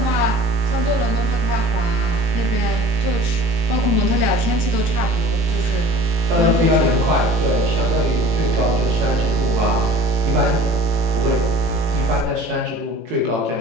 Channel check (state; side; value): late; left; 18 ms